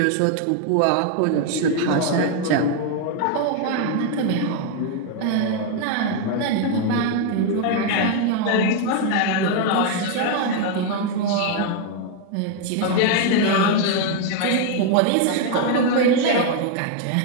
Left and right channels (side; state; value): both; different; correlation 0.01